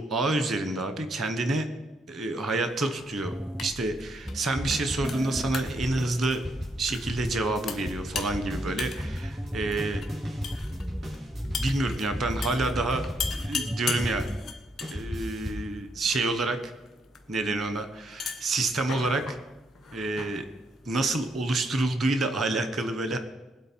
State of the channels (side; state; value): both; normal; correlation 0.75